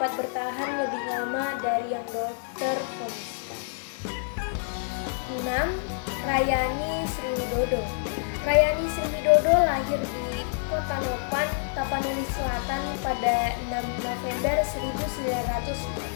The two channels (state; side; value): silent; right; 59 dB below the other